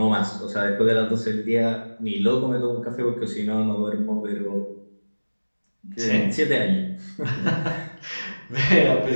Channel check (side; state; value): both; inverted; correlation -1.00